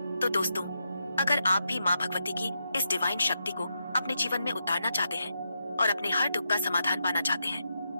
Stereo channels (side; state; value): both; inverted; correlation -0.84